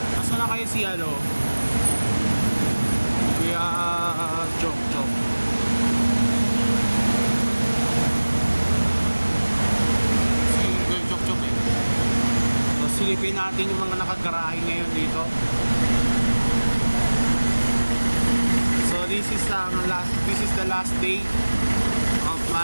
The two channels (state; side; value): inverted; both; correlation -1.00